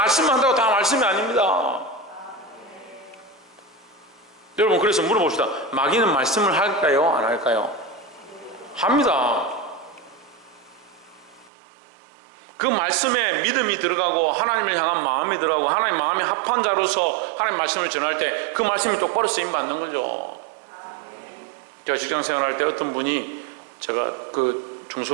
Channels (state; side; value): drops out; left; at 11.5 s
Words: 다 말씀이 아닙니다. 여러분, 그래서 물어봅시다. 마귀는 말씀을 할까요? 안 할까요? 합니다. 그 말씀에 믿음이 들어가고 하나님을 향한 마음이 들어가고 하나님 마음에 합한 자로서 하나님 말씀을 전할 때 그 말씀이 똑바로 쓰임받는 거죠. 제가 직장 생활할 때 어떤 분이, 제가 그